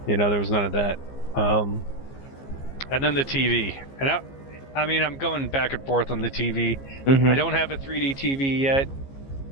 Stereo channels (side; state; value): right; late; 15 ms